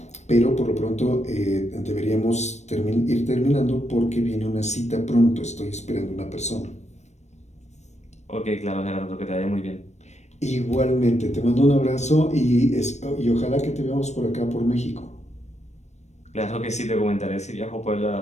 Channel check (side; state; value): right; late; 0.33 ms